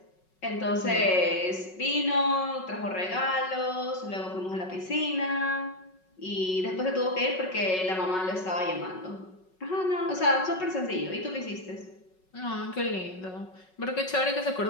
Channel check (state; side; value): late; right; 5.4 ms